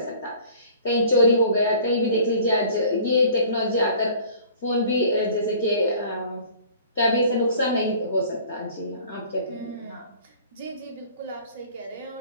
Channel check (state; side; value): inverted; both; correlation -0.49